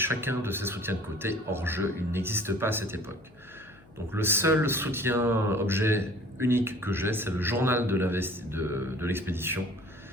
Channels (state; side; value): noise; left; hum, 28 dB below the sound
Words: de ces soutiens de côté, hors jeu, il n'existe pas à cette époque. Donc le seul soutien objet unique que j'ai, c'est le journal de l'expédition,